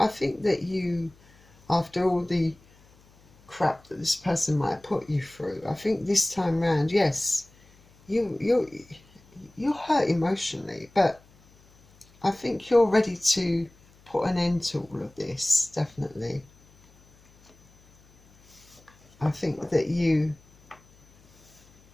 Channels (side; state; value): left; noise; hum, 29 dB below the sound